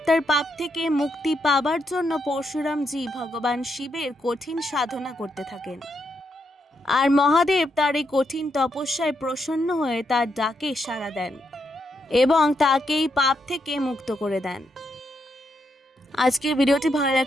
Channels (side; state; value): both; normal; correlation 0.80